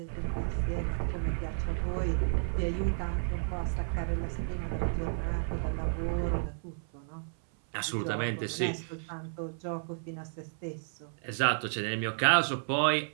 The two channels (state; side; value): silent; left; 56 dB below the other